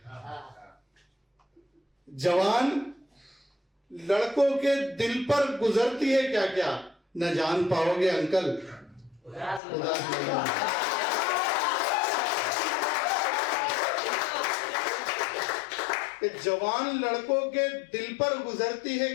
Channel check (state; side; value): drops out; right; at 9.6 s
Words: जवान लड़कों के दिल पर गुजरती है क्या क्या, न जान पाओगे अंकल उदास लम्हों। जवान लड़कों के दिल पर गुजरती है